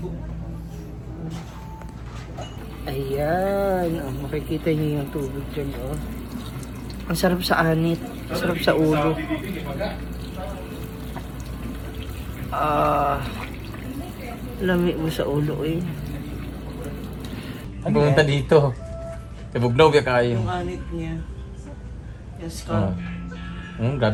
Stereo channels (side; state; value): both; identical; correlation 1.00